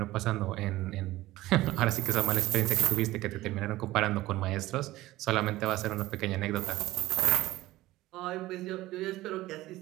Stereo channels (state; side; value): quieter; left; 17.1 dB